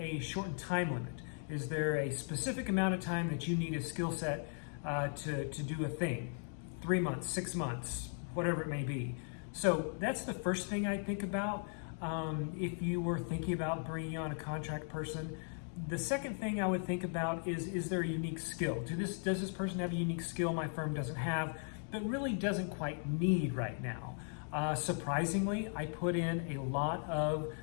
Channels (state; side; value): silent; right; 53 dB below the other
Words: shortened time limit? Is there a specific amount of time that you need a skill set to do a thing? 3 months, 6 months, whatever it may be. So that's the first thing I think about if you were thinking about bringing on a contract person. The second thing I would think about is there a unique skill? Does this person have a unique skill my firm doesn't have, but really doesn't quite need right now? Surprisingly, I put in a lot of